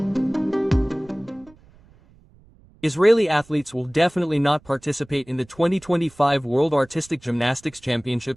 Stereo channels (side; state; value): right; noise; rumble, 28 dB below the sound